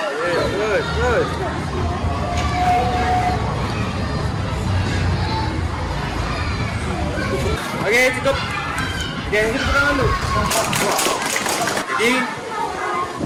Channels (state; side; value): identical; both; correlation 1.00